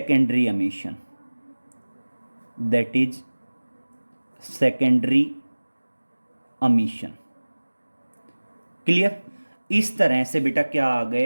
emission, that is secondary emission. Clear? इस तरह से बेटा क्या आ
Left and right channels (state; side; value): inverted; both; correlation -1.00